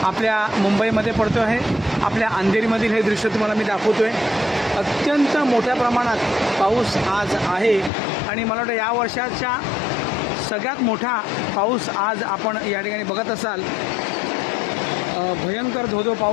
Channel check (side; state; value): right; drops out; at 7.9 s